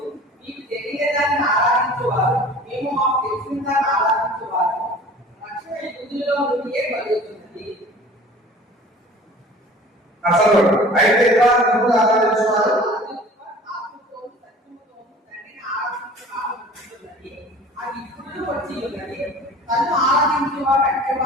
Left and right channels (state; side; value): normal; both; correlation 0.44